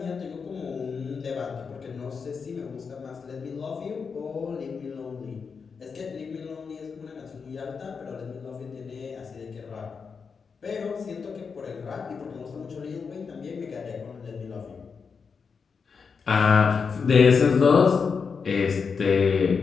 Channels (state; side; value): quieter; right; 5.6 dB